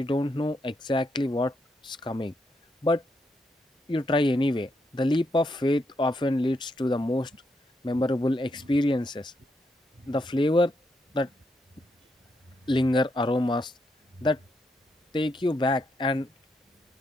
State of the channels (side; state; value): both; normal; correlation 0.79